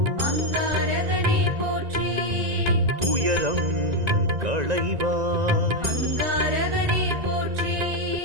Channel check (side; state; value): left; late; 1.9 ms